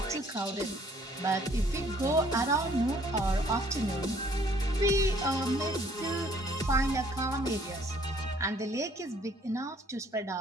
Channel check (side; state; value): both; normal; correlation 0.60